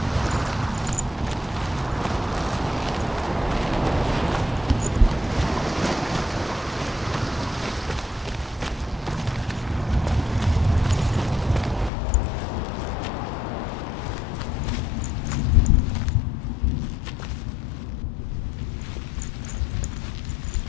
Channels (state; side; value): drops out; right; at 11.9 s